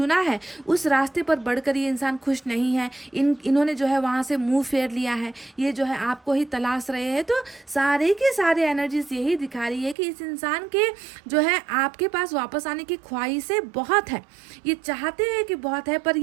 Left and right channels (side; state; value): left; drops out; at 10.0 s